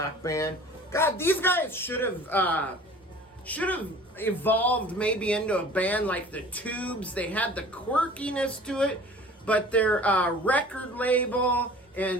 band. God, these guys should have evolved maybe into a band like the Tubes. They had the quirkiness to it, but their record label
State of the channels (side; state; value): both; normal; correlation 0.45